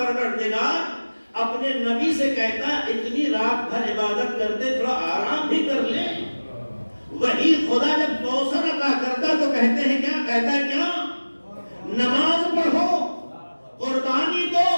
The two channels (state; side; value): inverted; both; correlation -1.00